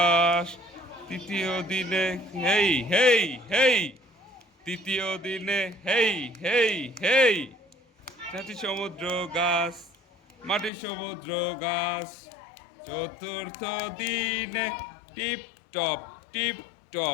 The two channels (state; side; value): drops out; right; at 10.7 s